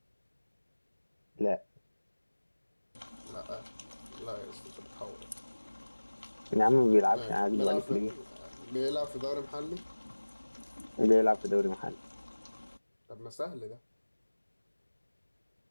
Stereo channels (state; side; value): inverted; both; correlation -1.00